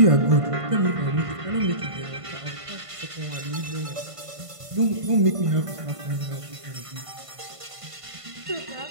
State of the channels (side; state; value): left; late; 1.5 ms